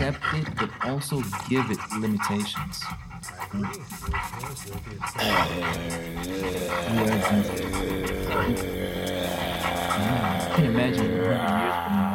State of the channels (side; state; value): both; identical; correlation 1.00